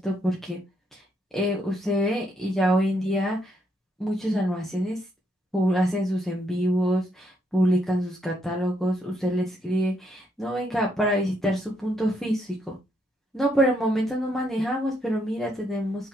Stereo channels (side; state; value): both; normal; correlation 0.75